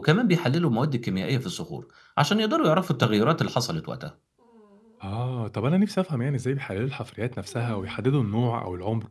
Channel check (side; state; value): both; identical; correlation 1.00